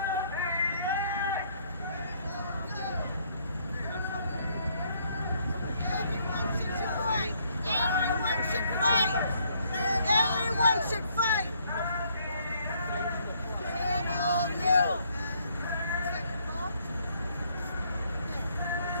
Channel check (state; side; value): inverted; both; correlation -0.68